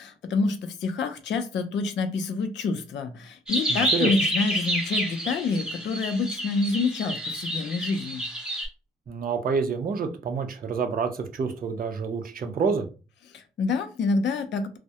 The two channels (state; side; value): normal; both; correlation 0.56